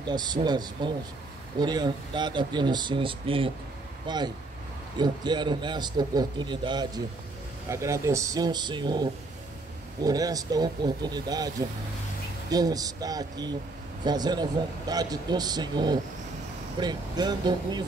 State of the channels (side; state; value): left; quieter; 3.1 dB